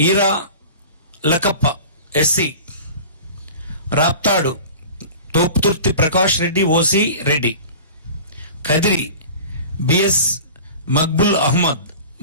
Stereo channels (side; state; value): both; inverted; correlation -0.39